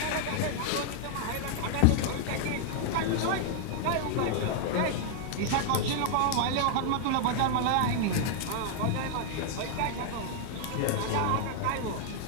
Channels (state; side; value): different; both; correlation 0.00